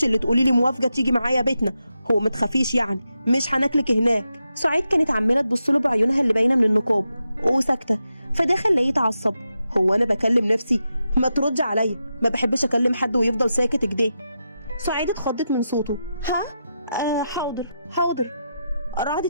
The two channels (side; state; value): both; inverted; correlation -0.87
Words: اللي تقولي لي موافقه تيجي معايا بيتنا، هو ما تخافيش يعني مش هناكلك هناك. سعيد كانت عماله تبص له بعيونها اللي باينه من النقاب وساكته، فده خلاه يتعصب. هو انا بكلم نفسي؟ ما تردي عليا، ما بحبش اكلم حد ويفضل ساكت كده. سعيد اتخضت من صوته. حاضر حاضر. رعد